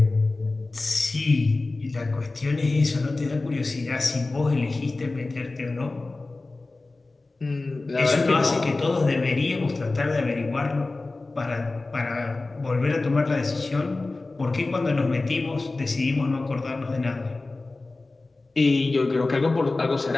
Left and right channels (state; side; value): quieter; right; 3.3 dB